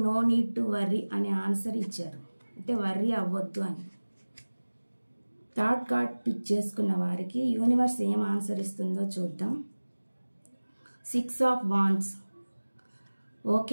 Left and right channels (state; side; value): inverted; both; correlation -1.00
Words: నో నీడ్ టు వర్రీ అనే ఆన్సర్ ఇచ్చారు, అంటే వర్రీ అవ్వద్దు అని. థర్డ్ కార్డ్ పిక్ చేసుకున్న వారికి యూనివర్స్ ఏం ఆన్సర్ ఇస్తుందో చూద్దాం. 6 ఆఫ్ వాండ్స్.